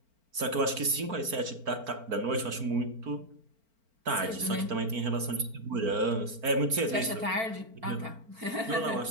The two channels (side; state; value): left; late; 4.4 ms